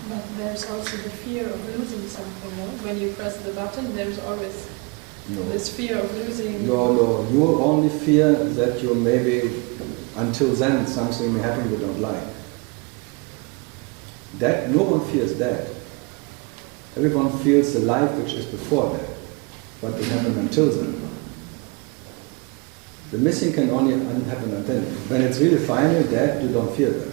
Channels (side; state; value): left; quieter; 29.8 dB